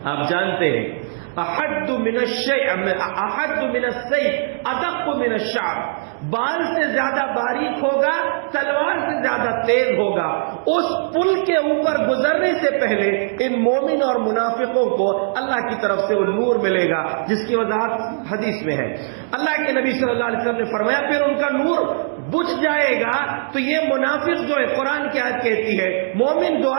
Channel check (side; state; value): left; silent; digital silence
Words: آپ جانتے ہیں احد من السیف ادق من الشعر، بال سے زیادہ باریک ہوگا، تلوار سے زیادہ تیز ہوگا۔ اس پل کے اوپر گزرنے سے پہلے ان مومن اور منافقوں کو اللہ کی طرف سے وہ نور ملے گا، جس کی وضاحت حدیث میں ہے۔ اللہ کے نبی صلی اللہ علیہ وسلم نے فرمایا پھر ان کا نور بجھ جائے گا تو یہ منافق جو ہے، قرآن کی آیت کہتی ہے مومن